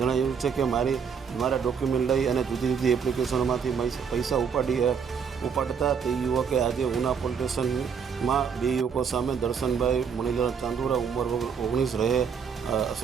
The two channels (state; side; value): quieter; left; 6.6 dB